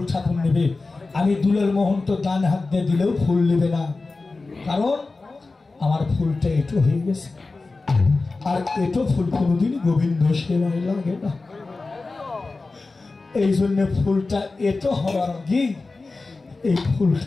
ঠাকুর নেবে। আমি দুলের মোহন তো ডান হাত দিয়ে দিলেও ফুল নেবে না, কারণ আমার ফুলটা এটো হয়ে গেছে। আর এটো ফুল কোনোদিন গোবিন্দ সেবায় লাগে না। এই জন্য ফুলটা এটো হওয়ার আগে এই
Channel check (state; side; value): quieter; right; 3.6 dB